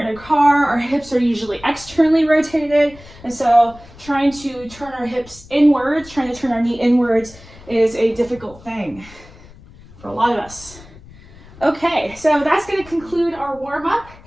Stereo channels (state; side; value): noise; left; rumble, 21 dB below the sound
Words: in a car, our hips are usually externally rotated, and so trying to turn our hips inwards, trying to turn our knee inwards is a difficult thing for a lot of us. Okay, so that's going to conclude our warm-up,